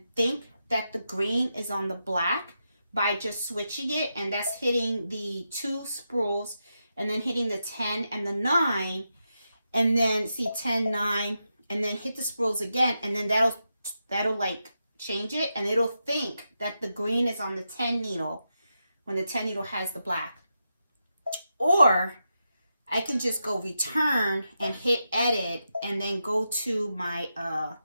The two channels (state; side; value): inverted; both; correlation -0.87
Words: think that the green is on the black by just switching it, and that's hitting the 2 spools and then hitting the 10 and the 9, and then see 10, 9, and then hit the spools again, and then that'll like change it, and it'll think that the green is on the 10 needle when the 10 needle has the black. Or I can just go return and hit edit and then go to my